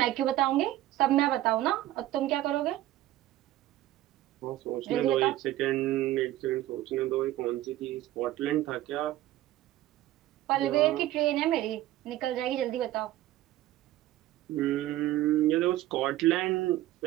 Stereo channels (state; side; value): quieter; left; 14.9 dB